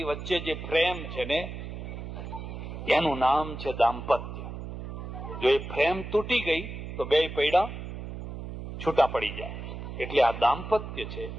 વચ્ચે જે પ્રેમ છે ને એનું નામ છે દાંપત્ય. જો એ પ્રેમ તૂટી ગઈ તો બે પૈડા છૂટા પડી જાય. એટલે આ દાંપત્ય છે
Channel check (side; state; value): right; noise; hum, 8 dB below the sound